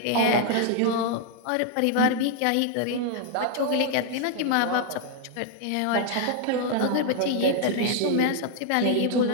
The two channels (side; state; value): both; different; correlation 0.00